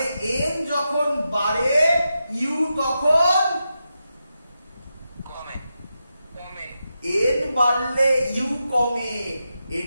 n যখন বাড়ে u তখন কমে n বাড়লে u কমে।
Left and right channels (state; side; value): inverted; both; correlation -0.88